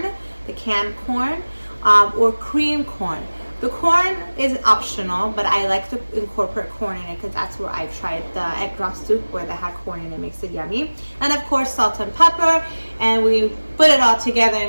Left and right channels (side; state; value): both; inverted; correlation -1.00